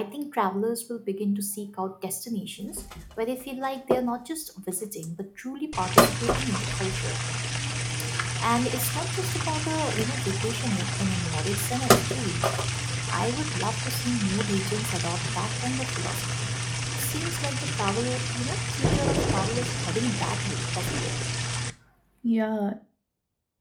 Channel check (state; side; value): identical; both; correlation 1.00